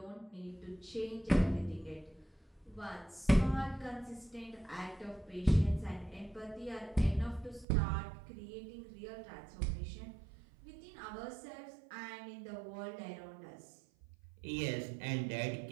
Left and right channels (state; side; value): drops out; left; at 7.7 s